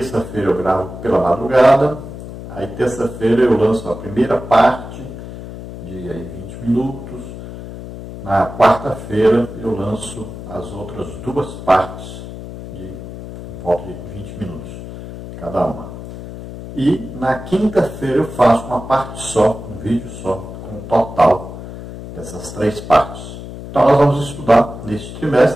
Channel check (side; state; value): left; noise; hum, 11 dB below the sound